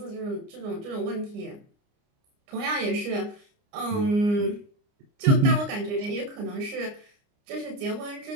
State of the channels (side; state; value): left; late; 29 ms